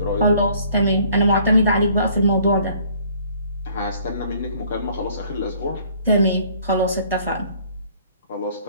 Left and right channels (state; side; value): inverted; both; correlation -0.58